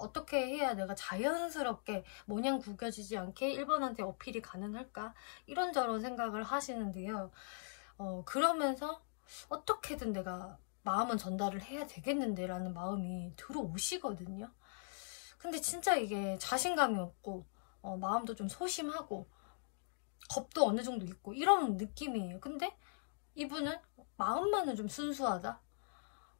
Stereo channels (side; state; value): right; silent; digital silence